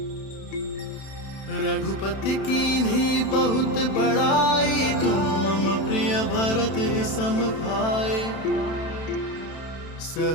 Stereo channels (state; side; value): late; right; 32 ms